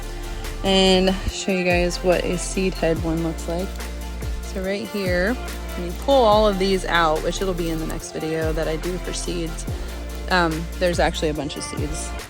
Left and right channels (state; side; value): identical; both; correlation 1.00